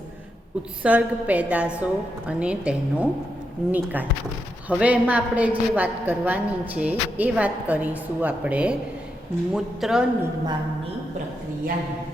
ઉત્સર્ગ પેદાશો અને તેનો નિકાલ. હવે એમાં આપણે જે વાત કરવાની છે એ વાત કરીશું આપણે મૂત્ર નિર્માણની પ્રક્રિયાની.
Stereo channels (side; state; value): both; normal; correlation 0.84